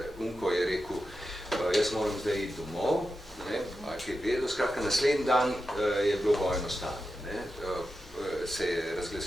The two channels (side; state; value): both; normal; correlation 0.90